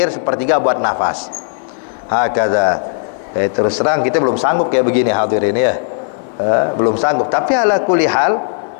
1/3 buat nafas. Hakadha. Terus terang kita belum sanggup kayak begini hadirin ya. Belum sanggup. Tapi ala kulli hal,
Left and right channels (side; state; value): right; silent; digital silence